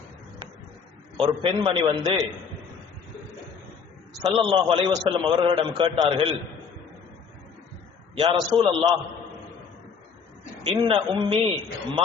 ஒரு பெண்மணி வந்து ஸல்லல்லாஹு அலைஹி வஸல்லம் அவர்களிடம் கேட்டார்கள், யா ரசூலல்லாஹ், இன்ன உம்மி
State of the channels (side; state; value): right; quieter; 6.0 dB